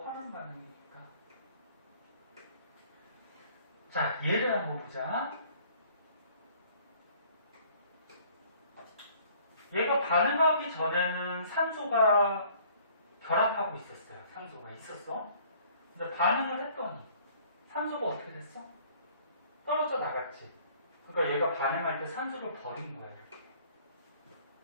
환원 반응이니까. 자, 예를 한번 보자. 얘가 반응하기 전에는 산소가 결합하고 있었어요. 산소가 있었어. 근데 반응을 했더니 산소가 어떻게 됐어? 떨어져 나갔지. 그러니까 얘가 반응할 때 산소를 버린 거예요.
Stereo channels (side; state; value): both; inverted; correlation -0.56